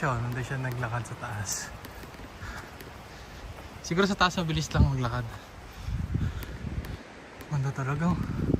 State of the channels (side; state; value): both; identical; correlation 1.00